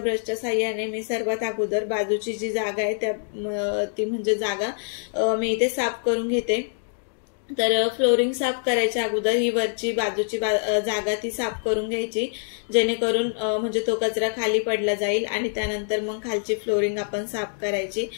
साहाय्याने मी सर्वात अगोदर बाजूची जी जागा आहे ती म्हणजे जागा मी इथे साफ करून घेते। तर फ्लोरिंग साफ करायच्या अगोदर ही वरची बाजूची जागा ती साफ करून घ्यायची, जेणेकरून म्हणजे तो कचरा खाली पडला जाईल आणि त्यानंतर मग खालची फ्लोरिंग आपण साफ करायची।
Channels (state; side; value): silent; right; digital silence